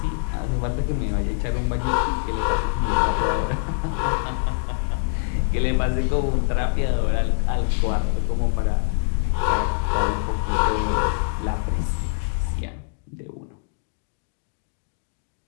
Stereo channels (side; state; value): right; silent; digital silence